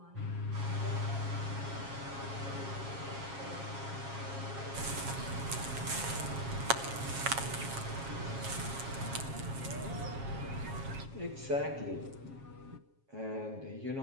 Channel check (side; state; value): left; late; 7.4 ms